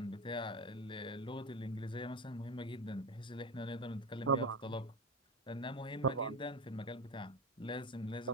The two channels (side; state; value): both; normal; correlation 0.21